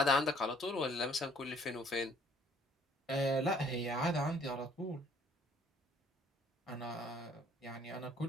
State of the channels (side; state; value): both; normal; correlation 0.59